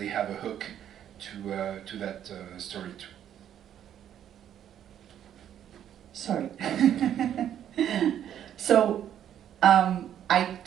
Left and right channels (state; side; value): quieter; left; 10.2 dB